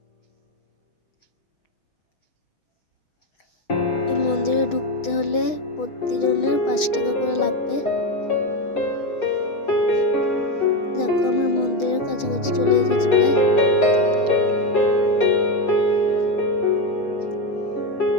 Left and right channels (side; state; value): right; late; 6.3 ms